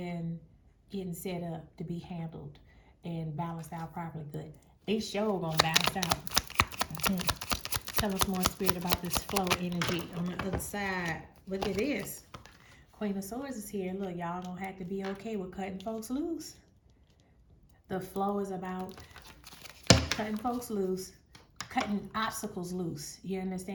getting set up to be handled and balanced out properly. Good. They sure gonna balance out. Tell us more, Spirit, about this flow energy on the other side. Look at this. Queen of Swords is here. Look, y'all gonna have to be okay with cutting folks loose. The flow is about cutting folks loose, cutting obstacles loose. You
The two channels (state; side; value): identical; both; correlation 1.00